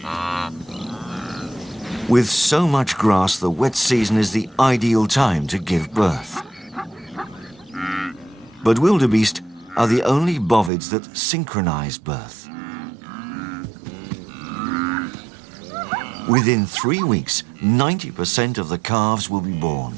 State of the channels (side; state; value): left; drops out; at 10.7 s